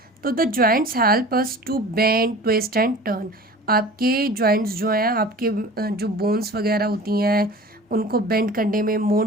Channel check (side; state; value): both; normal; correlation 0.41